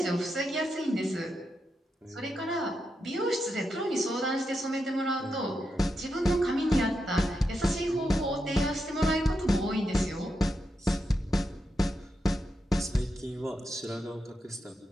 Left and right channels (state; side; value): normal; both; correlation 0.86